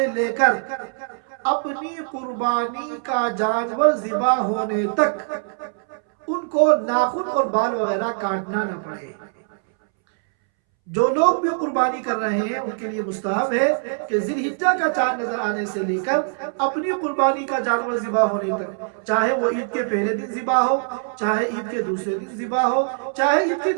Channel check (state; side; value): silent; left; 63 dB below the other